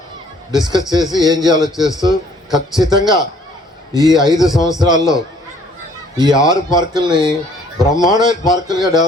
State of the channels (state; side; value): normal; both; correlation 0.59